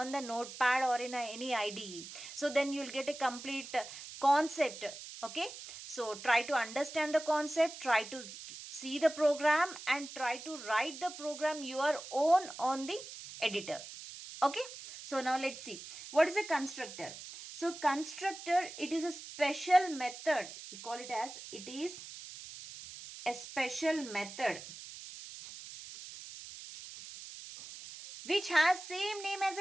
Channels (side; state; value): right; noise; hiss, 12 dB below the sound